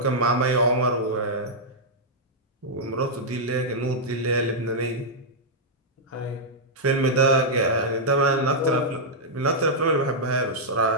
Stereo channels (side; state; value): both; normal; correlation -0.07